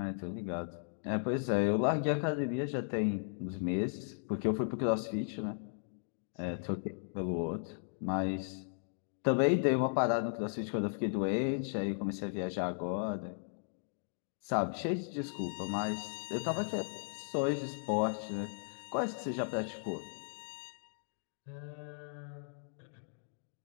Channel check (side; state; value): right; silent; digital silence